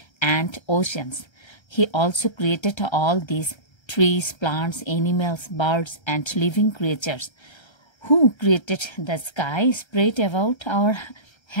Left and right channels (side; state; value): right; late; 1.3 ms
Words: and oceans. He also created all these trees, plants, animals, birds, and living creatures. Who created the sky spread about our